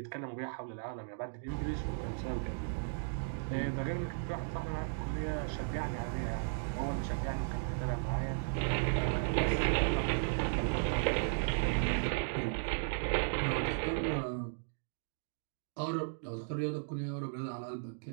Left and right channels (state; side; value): silent; left; digital silence